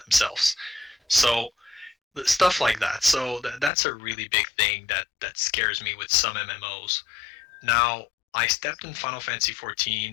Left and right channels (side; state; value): right; drops out; at 3.7 s